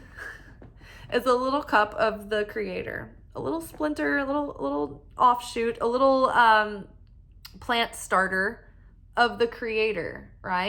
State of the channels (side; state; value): both; identical; correlation 1.00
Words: is a little cup of the Creator, a little splinter, a little offshoot, a little plant starter of the Creator,